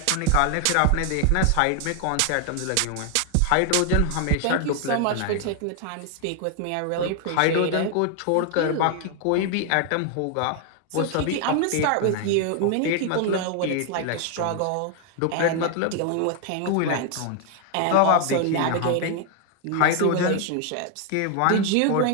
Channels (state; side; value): different; both; correlation 0.00